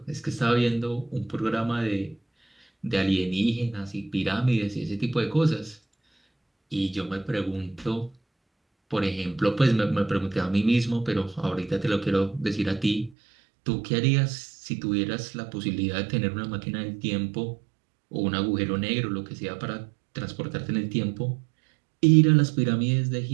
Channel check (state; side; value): drops out; left; at 13.1 s